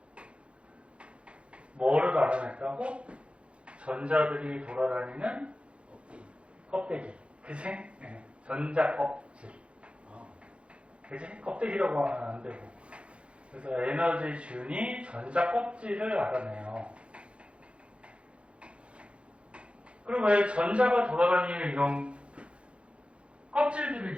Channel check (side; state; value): left; late; 0.060 ms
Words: 뭐를 알아냈다고? 전자들이 돌아다니는 껍데기. 그치? 네. 전자 껍질. 그치? 껍데기라고 하면 안 되고. 그래서 에너지 준이 전자 껍질을 알아내요. 그럼 왜 전자가 돌아다니는 이런